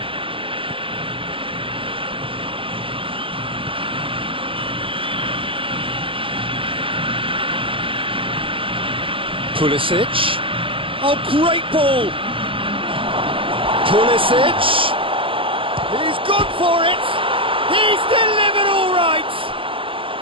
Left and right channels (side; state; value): left; late; 0.25 ms